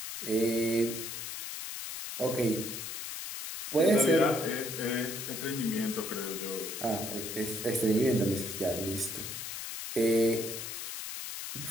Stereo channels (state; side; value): noise; left; hiss, 6 dB below the sound